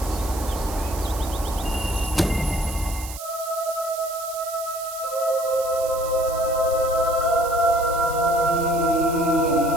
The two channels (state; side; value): noise; right; hiss, 12 dB below the sound